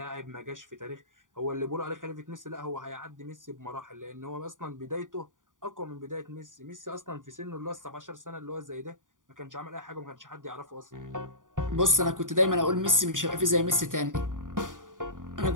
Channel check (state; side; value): late; left; 0.88 ms